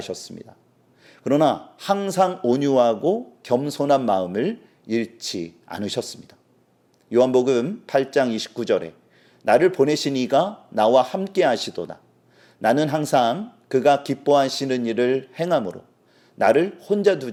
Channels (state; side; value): identical; both; correlation 1.00